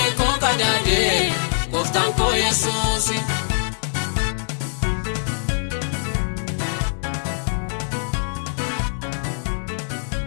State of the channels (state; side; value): silent; right; digital silence